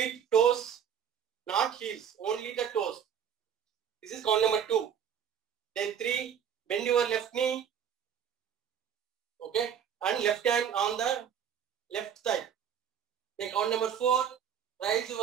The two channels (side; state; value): left; quieter; 8.4 dB